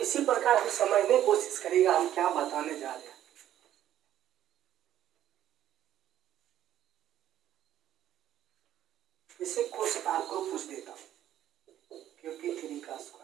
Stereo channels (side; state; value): left; quieter; 11.9 dB